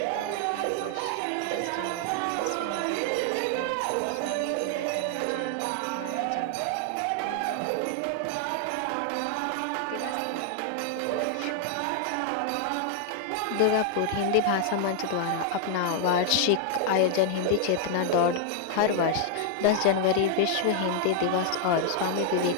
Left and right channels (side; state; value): both; different; correlation 0.00